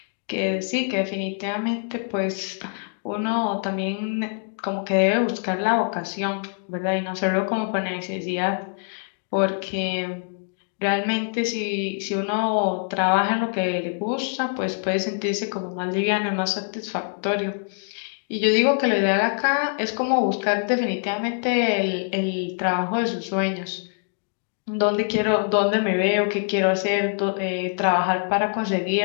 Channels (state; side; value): silent; right; 62 dB below the other